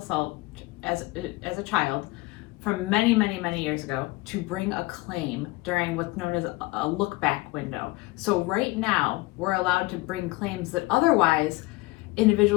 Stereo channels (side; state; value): right; quieter; 22.1 dB